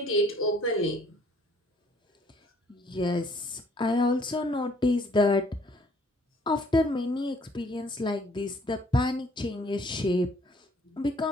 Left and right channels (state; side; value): normal; both; correlation 0.60